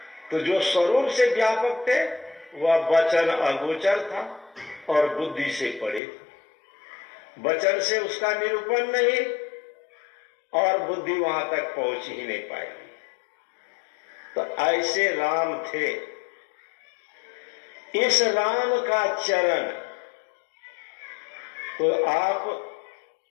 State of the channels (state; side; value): drops out; right; at 6.0 s